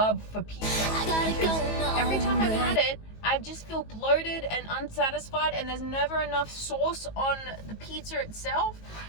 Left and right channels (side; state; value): right; late; 19 ms